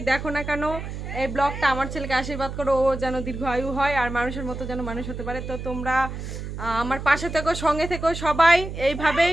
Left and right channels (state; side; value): noise; right; hum, 7 dB below the sound